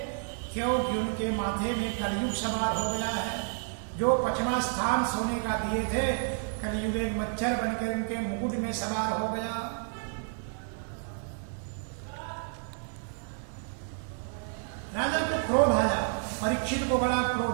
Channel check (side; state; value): left; silent; 57 dB below the other